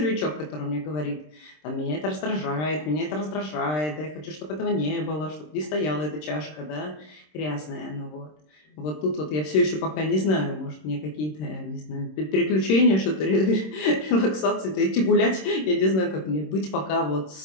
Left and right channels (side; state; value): right; late; 26 ms